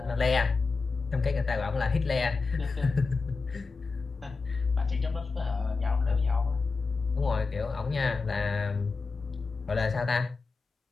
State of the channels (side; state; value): right; quieter; 4.3 dB